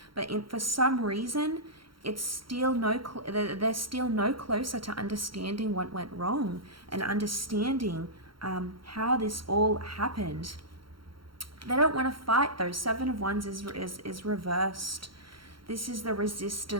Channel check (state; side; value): late; left; 0.73 ms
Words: but for some reason, it's still they're still no closer to understanding what went wrong and understanding how this all happened. They don't want to fight though. Seven of Wands is reversed. This is the